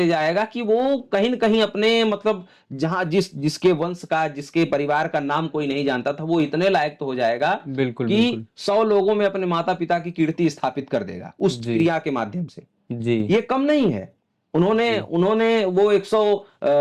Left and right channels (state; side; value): identical; both; correlation 1.00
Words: जाएगा कि वो कहीं न कहीं अपने मतलब जहां जिसके वंश का, जिसके परिवार का नाम कोई नहीं जानता था, वो इतने लायक तो हो जाएगा बिल्कुल कि बिल्कुल 100 लोगों में अपने माता पिता की कीर्ति स्थापित कर देगा उस जी क्रिया के माध्यम से। जी ये कम नहीं है। उन्होंने जी उन्होंने वो